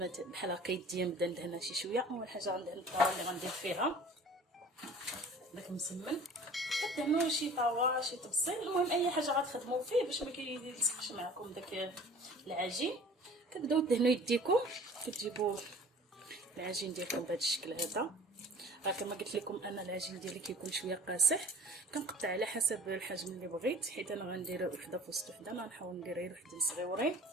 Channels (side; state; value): both; normal; correlation 0.45